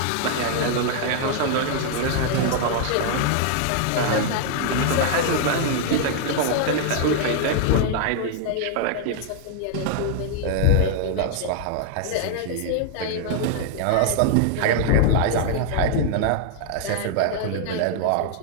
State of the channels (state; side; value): different; both; correlation -0.01